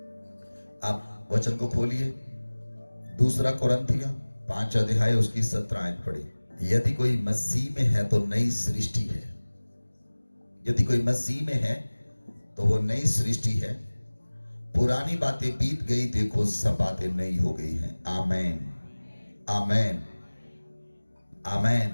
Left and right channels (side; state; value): both; inverted; correlation -1.00